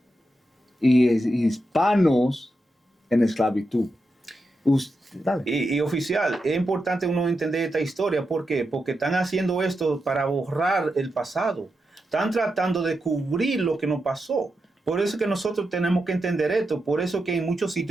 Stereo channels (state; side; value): normal; both; correlation 0.87